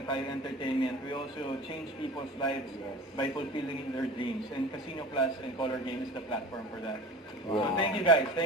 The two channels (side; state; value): both; normal; correlation 0.37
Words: tayo entertainment. We also change people's lives by fulfilling their dreams. And Casino Plus and Color Game is the platform for that. So thank you guys.